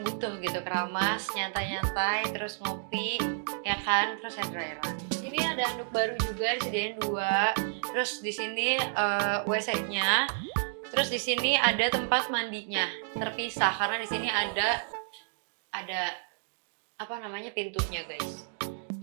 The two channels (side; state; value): left; silent; digital silence